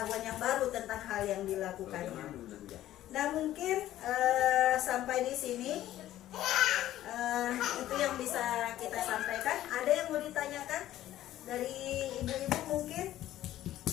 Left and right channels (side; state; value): right; quieter; 13.6 dB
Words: yang baru tentang hal yang dilakukannya. Nah, mungkin sampai di sini itu yang bisa kita sampaikan. Ada yang mau ditanyakan dari ibu-ibu mungkin?